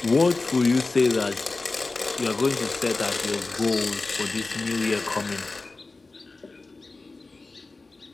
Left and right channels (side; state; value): right; quieter; 3.5 dB